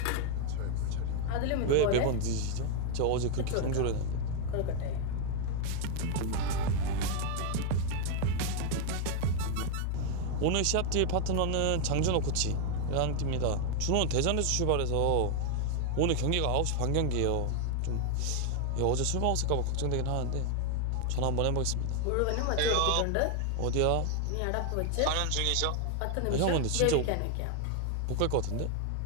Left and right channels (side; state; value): both; different; correlation 0.00